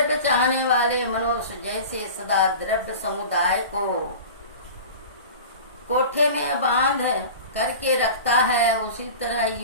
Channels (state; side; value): inverted; both; correlation -0.36